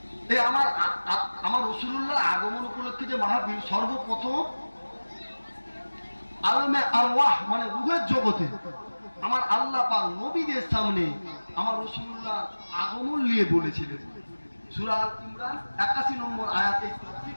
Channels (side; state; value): both; inverted; correlation -1.00